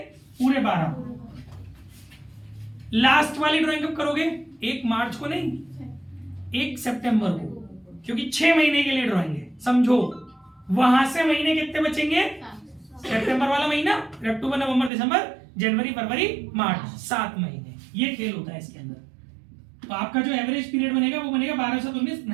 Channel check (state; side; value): drops out; left; at 14.9 s